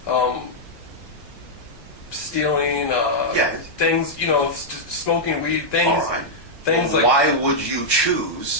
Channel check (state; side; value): late; right; 1.1 ms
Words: stealing things smoking weed things. All right. Things well, like why would you